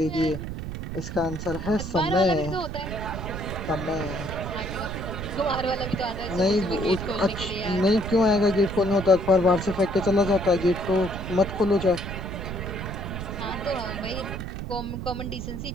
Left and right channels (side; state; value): right; noise; rumble, 6 dB below the sound